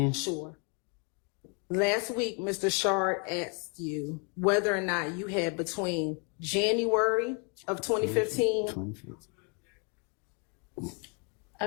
Sure. Last week, Mr. Shard asked you whether or not you had between January of 2015.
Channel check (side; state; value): right; quieter; 36.1 dB